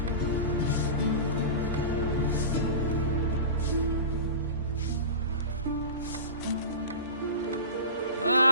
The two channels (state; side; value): inverted; both; correlation -0.32